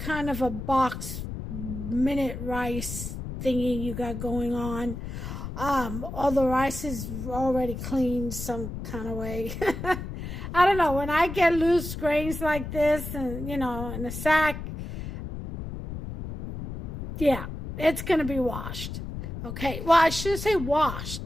of a box minute rice thingy you got going on. All the rice is already cleaned some kind of way. I don't know. When I get loose grains like this and, in a sack, yeah, it's going to be washed. Okay. Well, I should say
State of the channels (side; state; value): left; noise; rumble, 7 dB below the sound